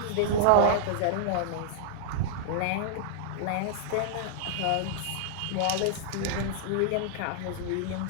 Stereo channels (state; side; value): different; both; correlation -0.02